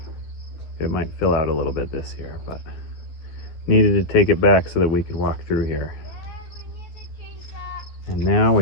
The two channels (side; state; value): right; late; 12 ms